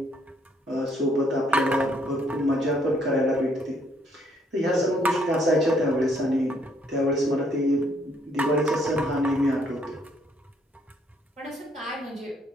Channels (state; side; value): normal; both; correlation 0.68